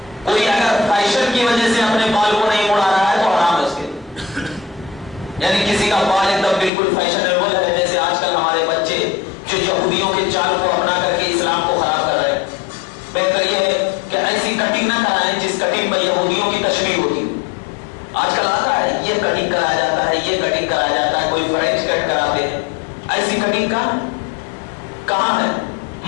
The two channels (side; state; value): right; drops out; at 6.7 s